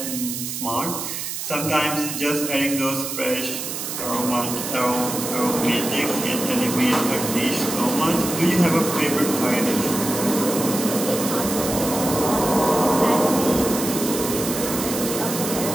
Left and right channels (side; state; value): right; noise; hiss, 5 dB below the sound